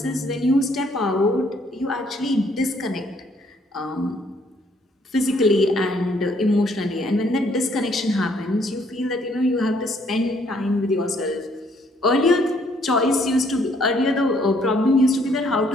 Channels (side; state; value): both; normal; correlation 0.66